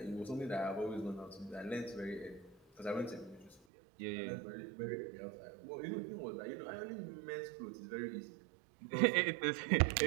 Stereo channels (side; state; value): left; drops out; at 3.6 s